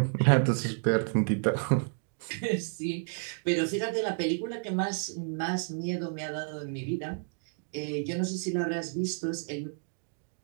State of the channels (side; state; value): left; silent; 57 dB below the other